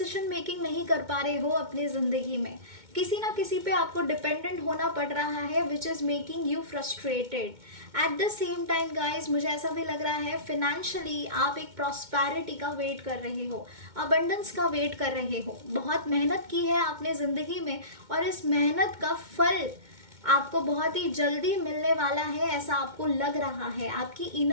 मेकिंग नहीं कर पा रहे हो अपनी ज़िंदगी में। किसी ना किसी पे आपको डिपेंडेंट होना पड़ रहा है which is making U frustrated. Eight the same time guys, मुझे ऐसा भी लग रहा है फिनेंशियली आप एक प्रॉस्पेरिटी का वेट कर रहे हो, अबंडेंस का वेट कर रहे हो। बहुत मेहनत की है आपने ज़िंदगी में और इस मेहनत का फल आपको बहुत ही जल्दी मिलने वाला है, ऐसा आपको लग रहा है। आपकी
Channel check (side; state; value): left; late; 2.2 ms